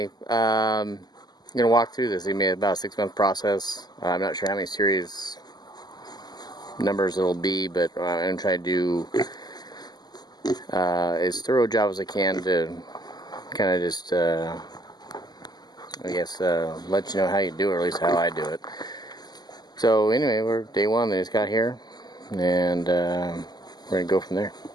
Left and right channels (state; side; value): late; right; 0.20 ms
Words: I'm gonna walk through this. It may be about a 6-month process. I'm not sure how many series numbers it'll be, but I'm gonna try to do as thorough a job as I can to kind of just I guess let you know how you do it, or at least how I do it. So anyway, we're day one. They just got here, and we're gonna go from there.